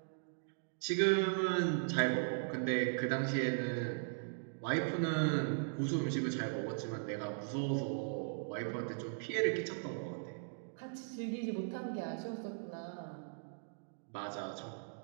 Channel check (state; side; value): silent; left; digital silence